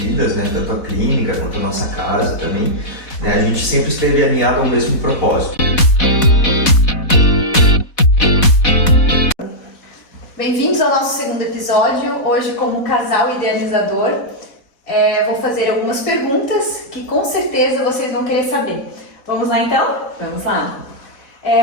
né? Tanto a clínica quanto a nossa casa também, né? A gente sempre esteve alinhado ao mesmo propósito. Bem-vindos ao nosso segundo episódio, hoje como casal idealizador. Vou fazer algumas perguntas que com certeza vocês vão querer saber. Vamos lá então? Vamos lá.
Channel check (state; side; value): late; right; 4.1 ms